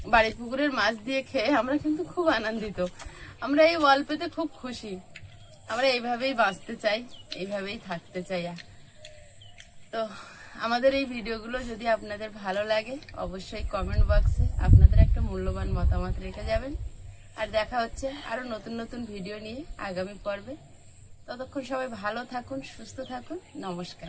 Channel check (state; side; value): identical; both; correlation 1.00